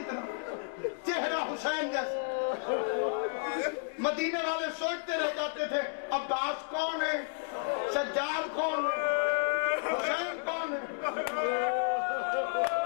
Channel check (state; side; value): silent; right; digital silence